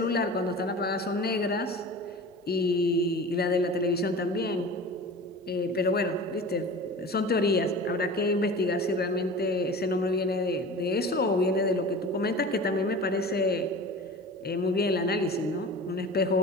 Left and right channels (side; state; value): both; normal; correlation 0.36